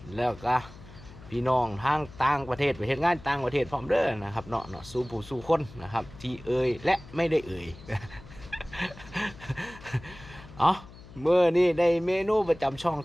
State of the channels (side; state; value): left; noise; hum, 18 dB below the sound